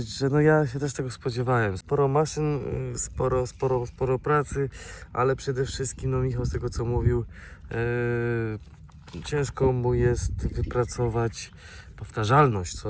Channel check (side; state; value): both; identical; correlation 1.00